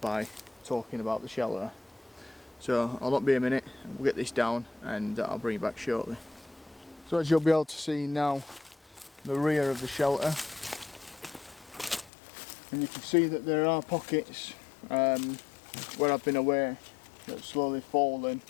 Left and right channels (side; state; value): right; drops out; at 12.1 s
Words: talking about the shelter. So I'll not be a minute, we'll get this down and I'll bring you back shortly. So as you'll be able to see now, the rear of the shelter, and you can see that there are pockets where I've been away that's slowly fallen